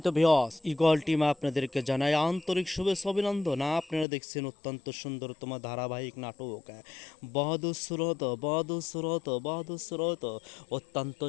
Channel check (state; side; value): drops out; right; at 4.0 s